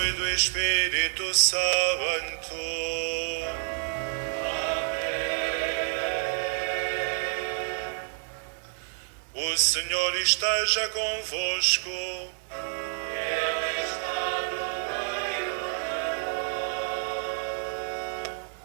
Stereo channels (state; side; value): silent; left; 59 dB below the other